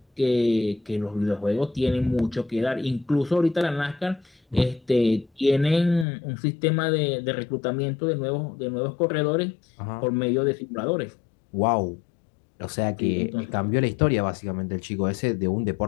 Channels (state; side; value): drops out; right; at 6.1 s